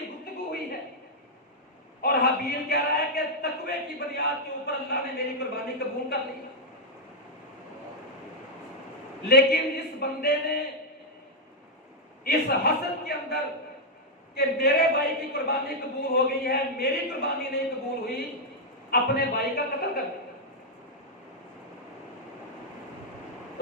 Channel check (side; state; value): both; normal; correlation -0.02